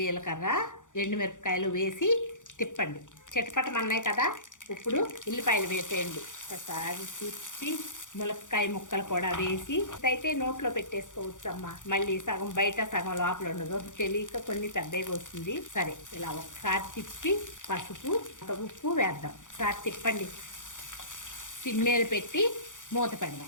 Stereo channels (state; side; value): late; right; 0.87 ms